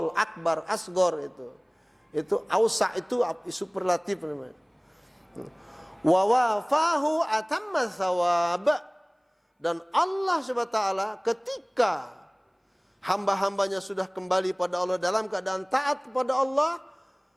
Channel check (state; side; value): identical; both; correlation 1.00